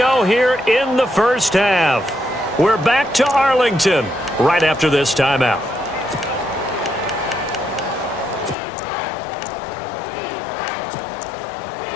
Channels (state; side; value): drops out; right; at 8.6 s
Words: here in the first half. We're back to Arlington right after this timeout.